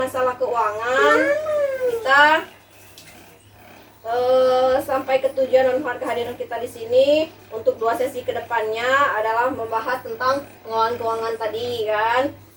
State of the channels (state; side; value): identical; both; correlation 1.00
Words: keuangan kita sampai ke tujuan dan kehadiran kita di sini untuk 2 sesi kedepannya adalah membahas tentang pengelolaan keuangan tadi kan.